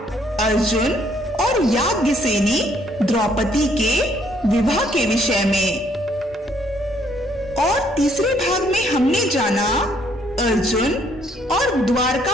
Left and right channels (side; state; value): both; normal; correlation 0.67